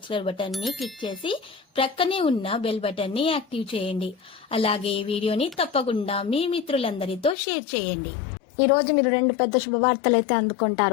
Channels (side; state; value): right; drops out; at 7.4 s